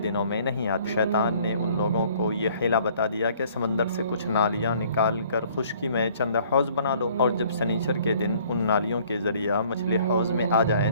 میں نہیں آتی۔ شیطان نے ان لوگوں کو یہ حیلہ بتا دیا کہ سمندر سے کچھ نالیاں نکال کر خشکی میں چند حوض بنا لو، اور جب سنیچر کے دن ان نالیوں کے ذریعہ مچھلی حوض میں آ جائیں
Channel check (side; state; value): both; inverted; correlation -0.58